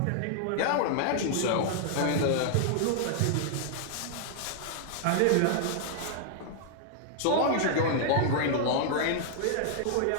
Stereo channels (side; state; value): both; different; correlation -0.01